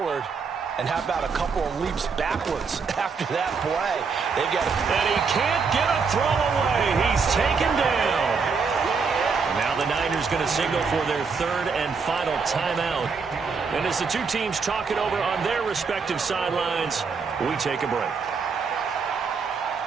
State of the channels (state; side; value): quieter; left; 5.2 dB